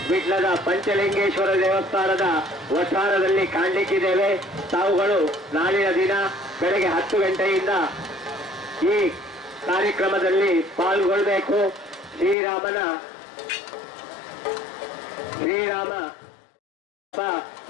ವಿಟ್ಲದ ಪಂಚಲಿಂಗೇಶ್ವರ ದೇವಸ್ಥಾನದ ವಠಾರದಲ್ಲಿ ಕಾಣಲಿಕ್ಕಿದ್ದೇವೆ. ತಾವುಗಳು ನಾಳಿನ ದಿನ ಬೆಳಗ್ಗೆ 10 ಗಂಟೆಯಿಂದ ಈ ಕಾರ್ಯಕ್ರಮದಲ್ಲಿ ಪಾಲ್ಗೊಳ್ಳಬೇಕು. ಶ್ರೀರಾಮ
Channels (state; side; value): drops out; right; at 12.4 s